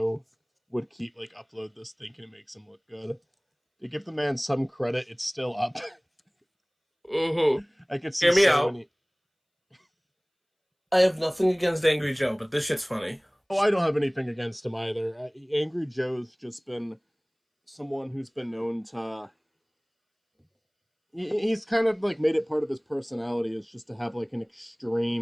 would keep like upload this thinking it makes him look good. To give the man some credit, it's still up. Mm-hmm. I could see Hear me so out. many. I have nothing against Angry Joe, but this shit's funny. Oh, I don't have anything against him either. Angry Joe's just been someone who's been known to. He's kind of like made it part of his personality is just to have like an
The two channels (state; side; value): identical; both; correlation 1.00